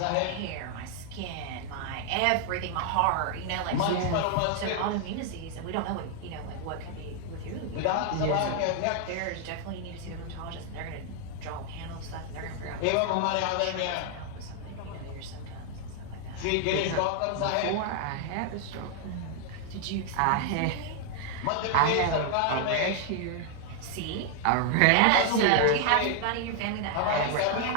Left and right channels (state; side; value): different; both; correlation 0.00